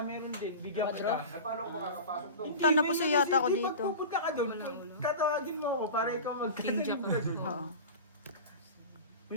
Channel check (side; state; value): both; inverted; correlation -0.31